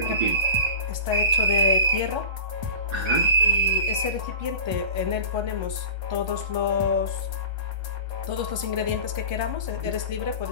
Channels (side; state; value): left; late; 1.3 ms